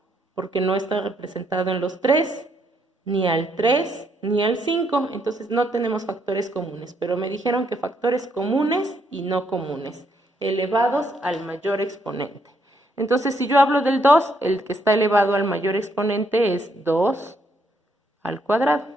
porque no está representado en los 3, ni al 3, ni al 5, entonces no tenemos factores comunes, pero me dijeron que factores comunes y no comunes, elevados al mayor exponente. Entonces, si yo hablo del 2, el que está elevado al mayor exponente es 2 al cuadrado.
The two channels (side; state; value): both; normal; correlation 0.73